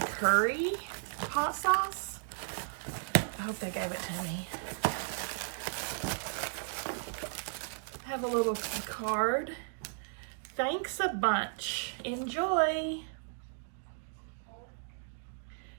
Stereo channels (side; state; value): left; silent; digital silence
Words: hot sauce. I hope they gave it to me. I have a little card. Thanks a bunch. Enjoy.